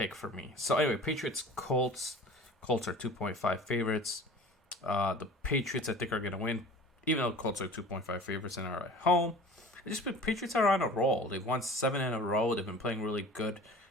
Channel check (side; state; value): both; normal; correlation 0.42